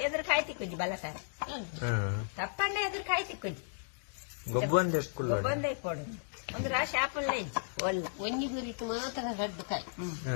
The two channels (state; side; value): silent; right; digital silence